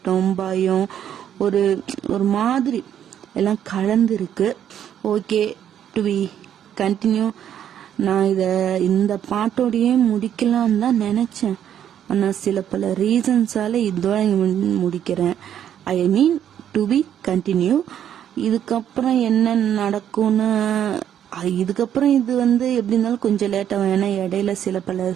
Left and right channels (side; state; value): left; quieter; 9.9 dB